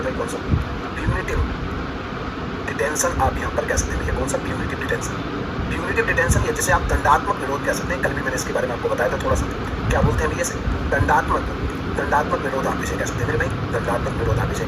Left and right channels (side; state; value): both; identical; correlation 1.00